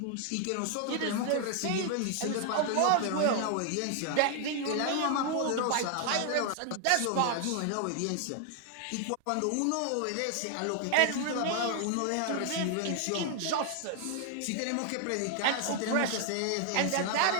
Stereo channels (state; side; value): different; both; correlation 0.00